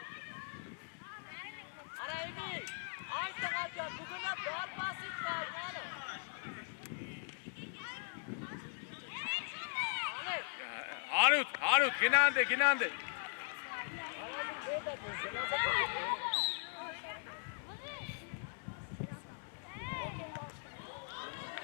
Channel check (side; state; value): right; silent; digital silence